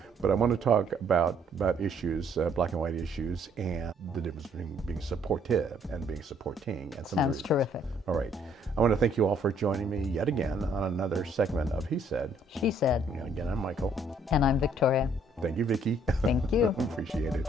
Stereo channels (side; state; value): both; normal; correlation 0.64